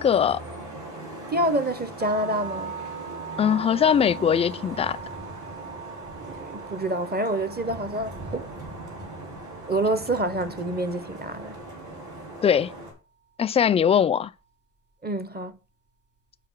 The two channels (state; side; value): quieter; right; 3.8 dB